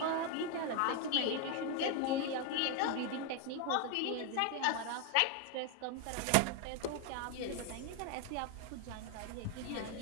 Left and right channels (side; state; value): both; different; correlation 0.01